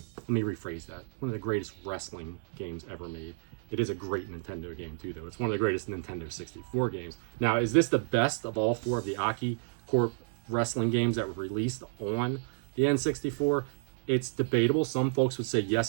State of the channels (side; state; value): left; silent; digital silence